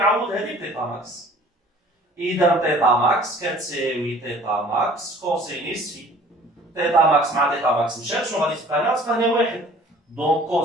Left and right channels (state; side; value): normal; both; correlation 0.50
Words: هذه بطيطا ماكس. اذا طيطا ماكس كتساوي طيطا ماكس كوسينيس في. طيطا ماكس مع طيطا ماكس مشات، شنو غادي تبقى لنا؟ تبقى لنا واحد، دونك